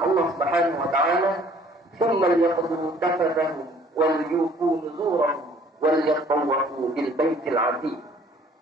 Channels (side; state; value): both; normal; correlation 0.57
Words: Subhanahu wa taala, "Tsumma liyaqdu tafatahum wal yufu nuzurahum wal yatawwafu bil baitil 'atiq."